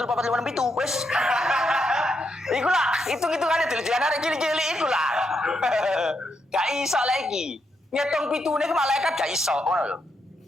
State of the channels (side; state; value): both; normal; correlation 0.81